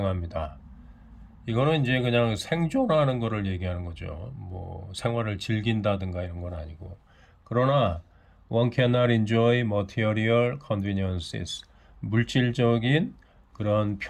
이거는 이제 그냥 생존하는 거를 얘기하는 거죠. 뭐 생활을 즐긴다든가 이런 건 아니고. 그러나 one cannot enjoy material conveniences. 물질적인 그런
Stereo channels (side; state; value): both; identical; correlation 1.00